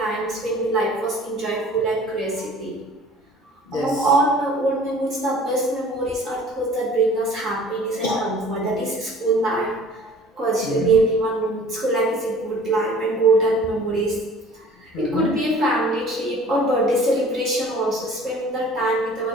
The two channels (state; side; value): normal; both; correlation 0.48